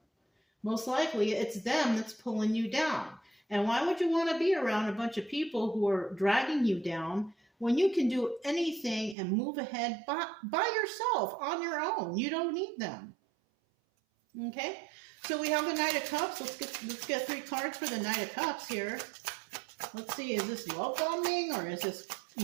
Most likely it's them that's pulling you down. And why would you want to be around a bunch of people who are dragging you down when you can do anything and move ahead by yourself on your own? You don't need them. Okay? So we have the Knight of Cups. Let's get 3 cards for the Knight of Cups here. Let's see, is this love bombing or is this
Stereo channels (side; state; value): left; drops out; at 9.2 s